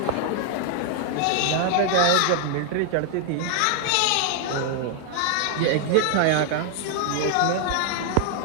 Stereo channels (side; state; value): both; different; correlation 0.00